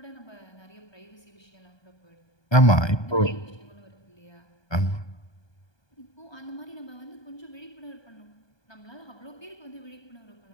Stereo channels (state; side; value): late; right; 1.2 ms